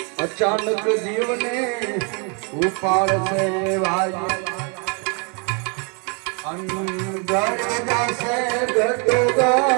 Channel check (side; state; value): left; quieter; 36.6 dB